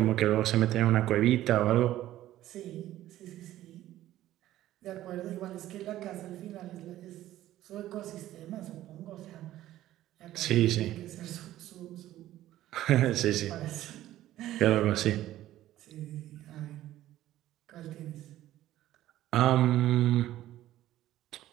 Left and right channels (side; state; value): left; quieter; 14.0 dB